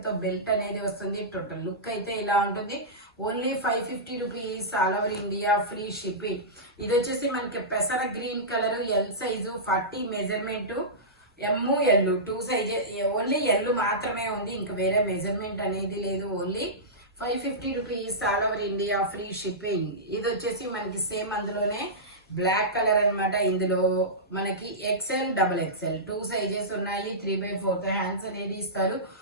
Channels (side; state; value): both; normal; correlation -0.16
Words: తో బెల్ట్ అనేది వస్తుంది. టోటల్ లుక్ అయితే ఇలా ఉంటుంది. Only 550 rupees, all over India free shipping. ఇది వచ్చేసి మనకి పెసర green colour, L size 40 measurement. M, L 2 sizes, only L మాత్రమే ఉంది, ఇంకా వేరే మెజర్మెంట్ అనేది లేదు. Only 550 rupees, all over India free shipping. ఇది వచ్చేసి మనకి సేమ్ అందులోనే బ్లాక్ కలర్ అనమాట. ఇందులో మనకి ఎక్స్ఎల్, డబుల్ ఎక్స్ఎల్ 2 సైజెస్ ఉన్నాయి. 3/4 హ్యాండ్స్ అనేది ఇస్తారు.